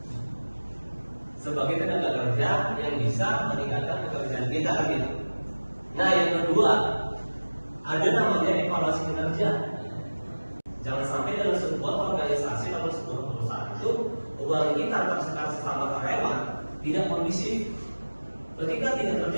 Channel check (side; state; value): both; inverted; correlation -1.00